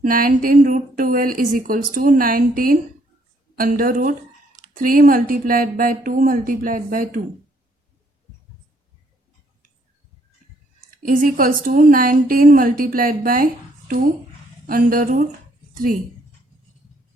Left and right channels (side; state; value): both; normal; correlation 0.67